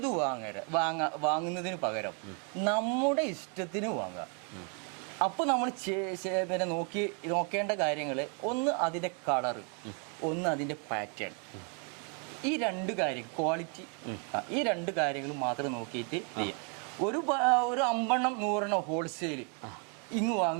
വാങ്ങുന്നതിന് പകരം നമ്മുടെ ഇഷ്ടത്തിന് വാങ്ങുക. അപ്പോൾ നമ്മൾ പിന്നെ നോക്കേണ്ട കാര്യങ്ങൾ, ഒന്ന് അതിൻ്റെ കളറ്, ഒന്ന് അതിൻ്റെ പാറ്റേൺ. ഈ 2 കാര്യം, ക്വാളിറ്റി, ഈ 2 കാര്യങ്ങൾ മാത്രം നോക്കിയിട്ട് ചെയ്യാം. ഒരു 50-100 ഹോൾസെയിൽ ഇങ്ങ്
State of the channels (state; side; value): quieter; left; 38.7 dB